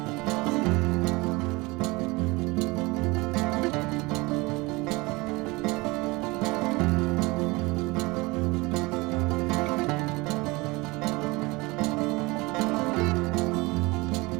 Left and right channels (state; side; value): quieter; left; 23.9 dB